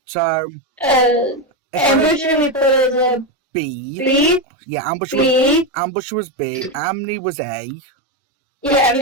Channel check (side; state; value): both; normal; correlation 0.10